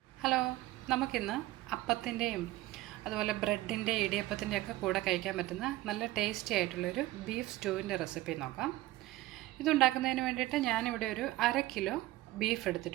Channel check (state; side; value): quieter; left; 17.2 dB